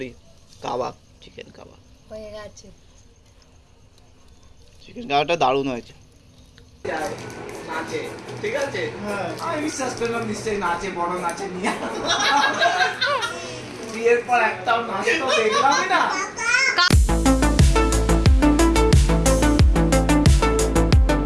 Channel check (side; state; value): both; identical; correlation 1.00